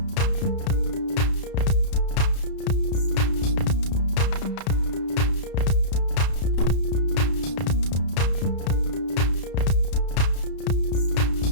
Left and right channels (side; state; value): right; late; 32 ms